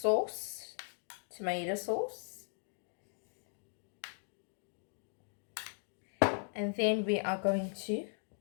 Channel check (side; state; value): right; silent; 52 dB below the other